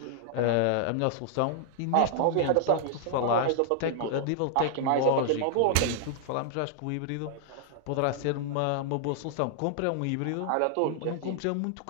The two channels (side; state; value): both; different; correlation -0.01